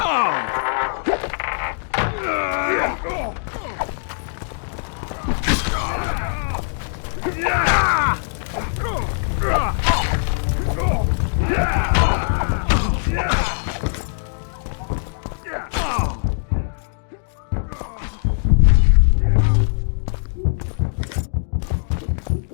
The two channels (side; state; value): right; silent; digital silence